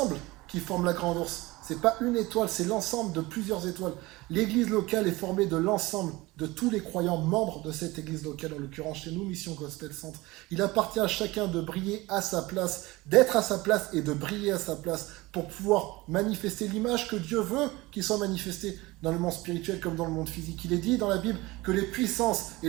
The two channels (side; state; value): left; quieter; 21.1 dB